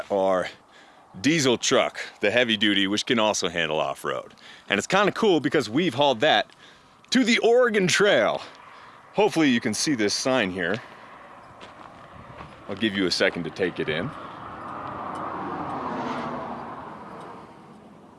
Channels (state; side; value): identical; both; correlation 1.00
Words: our diesel truck, the heavy duty, which can also handle off-road. And it's kind of cool because we've hauled that to the Oregon Trail. Hopefully you can see this sign here. I'll give you a second to take it in.